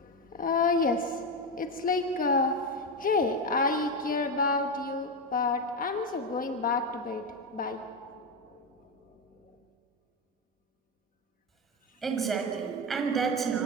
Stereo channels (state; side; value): normal; both; correlation 0.13